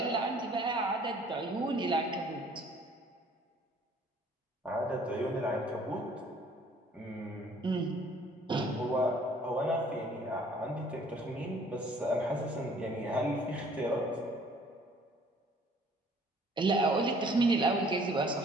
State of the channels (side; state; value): both; normal; correlation 0.57